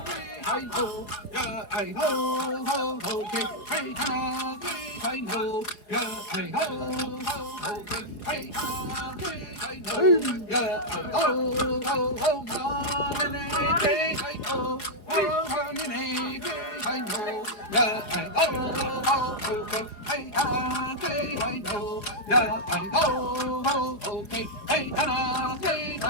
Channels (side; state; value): right; late; 4.8 ms